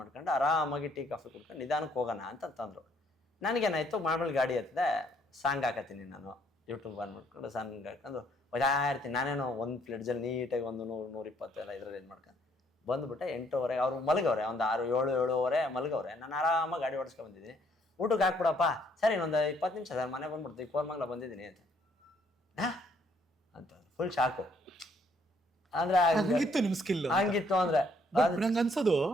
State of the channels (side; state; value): both; normal; correlation 0.67